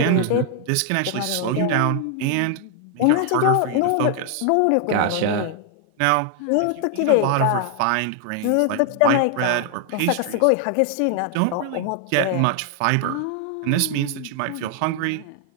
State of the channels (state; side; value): different; both; correlation 0.00